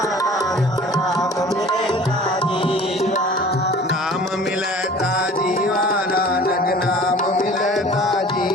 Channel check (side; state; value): both; normal; correlation 0.46